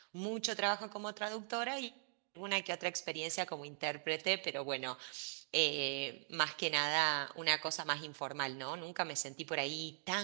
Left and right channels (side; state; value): left; silent; digital silence